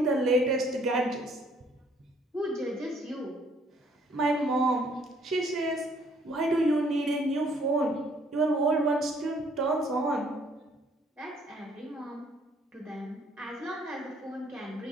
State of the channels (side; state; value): both; normal; correlation 0.63